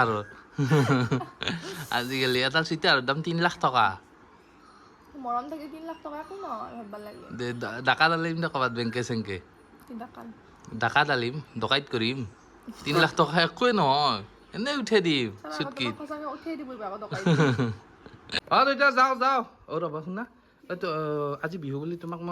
আজিকালি এটা চিতাৰ দাম 3 লাখ টকা মৰম থাকি 3 লাখ টকা একো নহয় ভাববা লাগে দে ডাকা ডালিম দে ক'ৰবাত বেংকে চেংকে ডাকা ডালিম ডকাইত কৰিম 3 লাখ টকা একোৱে নহয় এনেই উঠাই দিম চুটকিত সঁচাকে উঠাই দিব আকৌ টকা অঁ দেউতা যাওঁ ৰ'বা শুনা এইটো আজি বিহু বুলি তোমাক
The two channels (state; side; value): identical; both; correlation 1.00